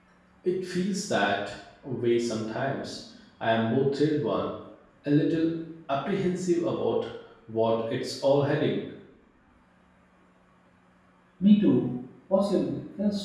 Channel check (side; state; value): both; identical; correlation 1.00